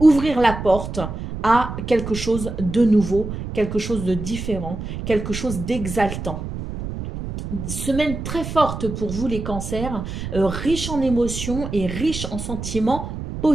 ouvrir la porte à quelque chose de nouveau, quelque chose de différent, quelque chose d'exaltant. Semaine très forte pour vous les cancers, riche en émotions et riche en sentiments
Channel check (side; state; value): right; noise; rumble, 7 dB below the sound